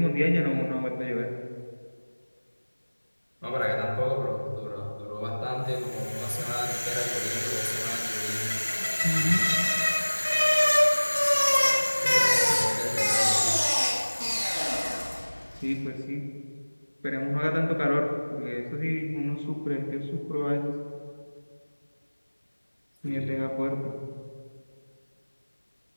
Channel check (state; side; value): inverted; both; correlation -1.00